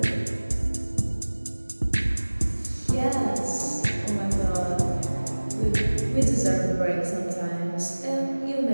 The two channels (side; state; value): both; inverted; correlation -1.00